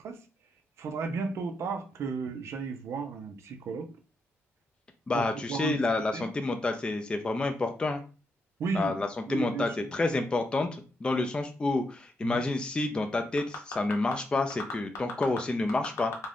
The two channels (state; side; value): normal; both; correlation 0.82